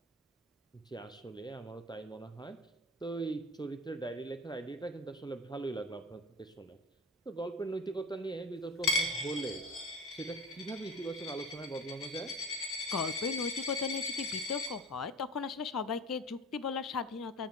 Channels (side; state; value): both; normal; correlation 0.32